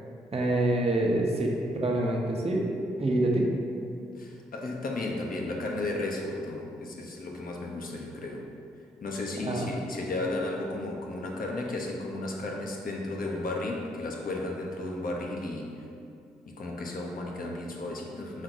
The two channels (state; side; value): normal; both; correlation 0.71